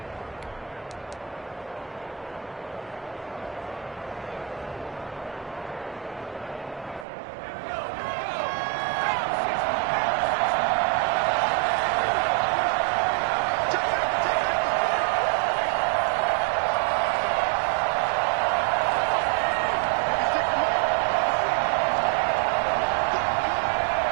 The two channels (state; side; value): drops out; left; at 7.1 s